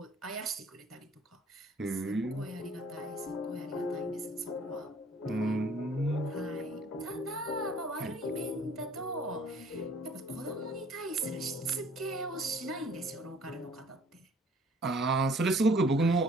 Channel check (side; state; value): both; normal; correlation 0.56